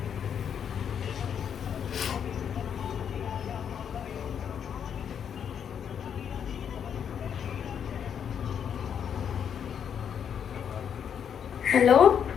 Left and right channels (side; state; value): right; quieter; 8.1 dB